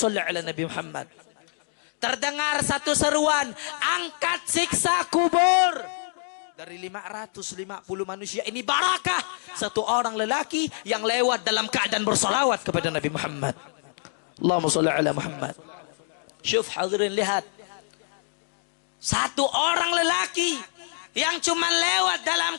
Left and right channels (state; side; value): silent; right; digital silence